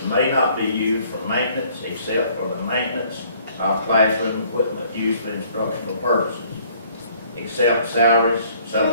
may not be used for maintenance except for the maintenance of classroom equipment used for instructional purposes, except salaries,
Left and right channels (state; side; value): inverted; both; correlation -0.60